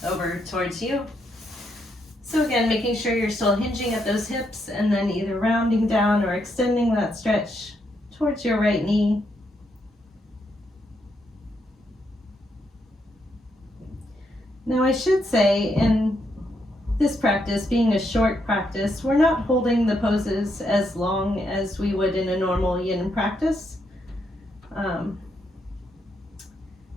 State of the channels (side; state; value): both; normal; correlation 0.78